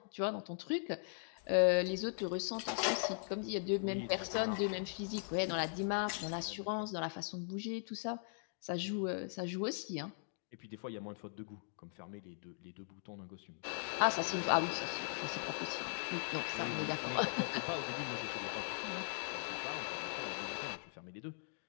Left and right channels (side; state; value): right; silent; digital silence